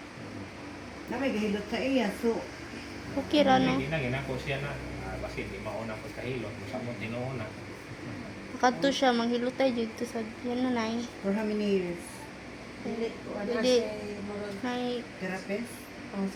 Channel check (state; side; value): identical; both; correlation 1.00